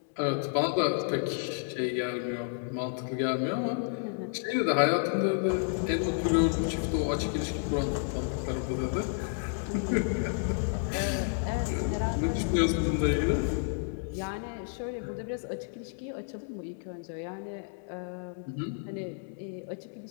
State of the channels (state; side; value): silent; right; digital silence